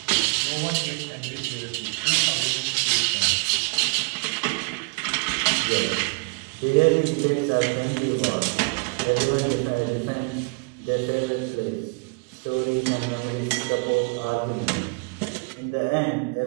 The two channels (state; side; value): quieter; left; 35.0 dB